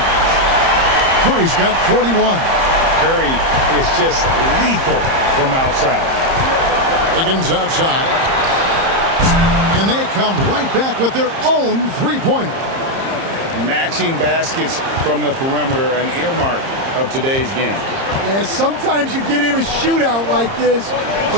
Curry's got 41. Curry is just lethal from outside. Wiggins outside. And they come right back with their own 3-pointer. Matching baskets from the perimeter, an earmark of today's game. Yeah, sometimes you get in a shootout like this,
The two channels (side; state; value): left; late; 30 ms